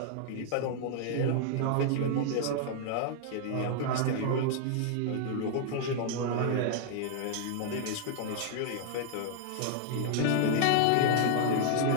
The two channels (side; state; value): both; different; correlation -0.01